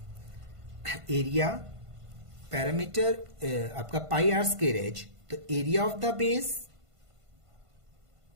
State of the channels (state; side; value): late; left; 1.5 ms